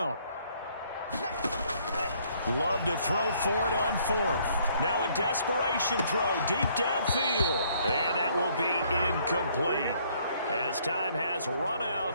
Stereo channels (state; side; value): inverted; both; correlation -0.65